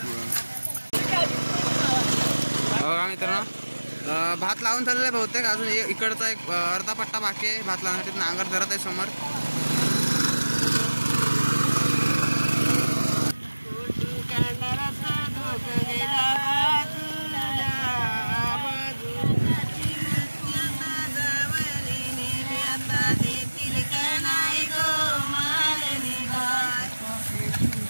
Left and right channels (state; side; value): inverted; both; correlation -1.00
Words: बघा मित्रांनो, भात लावून झालेला आहे बहुतेक. अजून इकडचा एक अर्धा पट्टा बाकी आहे भात लावण्यासाठी. नांगर धरत आहे समोर.